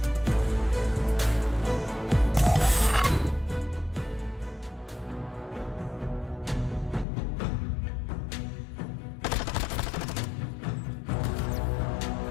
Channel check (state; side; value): drops out; right; at 7.1 s